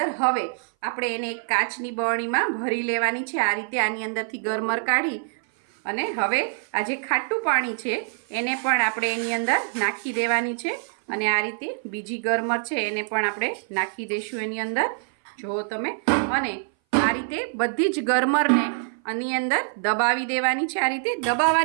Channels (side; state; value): left; silent; 58 dB below the other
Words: હવે આપણે એને એક કાચની બરણીમાં ભરી લેવાની છે. આ રીતે આની અંદરથી ગરમર કાઢી અને હવે આ જે ખાટું પાણી છે એને પણ આપણે એની અંદર નાખી દેવાની છે. અને આ રીતે બીજી ગરમર છે એને પણ આપણે નાખી દઈશું એની અંદર, જુઓ તમે. અને આ રીતે બધી જ ગરમરને આની અંદર દબાવી દેવાની છે. આ રીતે